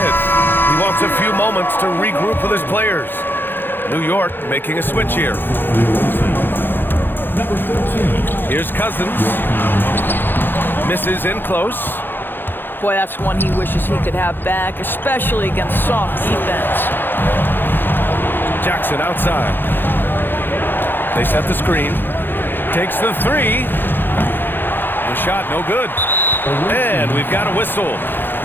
He wants a few moments to regroup with his players. New York making a switch here. Here's Cousins. Misses in close. Boy, that's one he wishes he could have back, especially against soft defense. Jackson outside. They set the screen. Takes the 3. The shot no good. And we've got a whistle.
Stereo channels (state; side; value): late; right; 0.098 ms